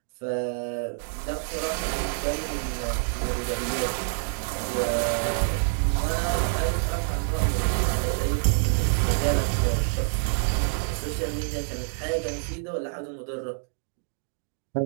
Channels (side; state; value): left; silent; digital silence